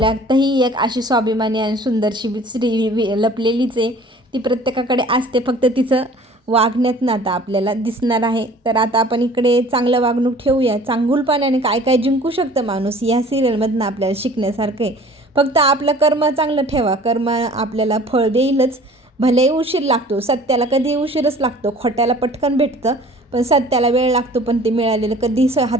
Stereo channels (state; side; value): normal; both; correlation 0.49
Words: एक अशी स्वाभिमानी आणि सुंदरशी स्त्री लपलेलीच आहे. ती प्रत्येकाकडे असते, फक्त तिचं वागण्यात आता आपल्याला दिसणार आहे. तर आता आपण इकडे चांगलं वागणूक ठेवूया. चांगुलपणाने काय काय जिंकू शकतं माणूस या सिरियलमधनं आपल्याला शिकण्यासारखं आहे. फक्त आपलं कर्म चांगलं ठेवा, कर्म आपल्याला फळ देईलच. भलेही उशीर लागतो, सत्याला कधी उशीरच लागतो. खोट्याला पटकन भेटतं, पण सत्याला वेळ लागतो. पण ते मिळालेलं कधी